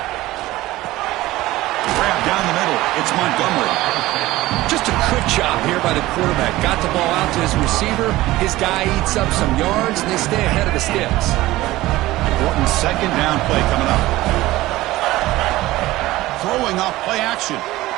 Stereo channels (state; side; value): quieter; left; 17.5 dB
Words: Grab down the middle. It's Montgomery. Just a good job here by the quarterback. Got the ball out to his receiver. His guy eats up some yards, and they stay ahead of the sticks. Important 2nd down play coming up. Throwing off play action.